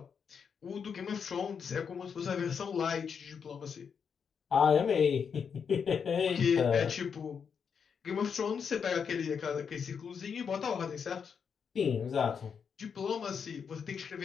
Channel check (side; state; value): right; quieter; 6.6 dB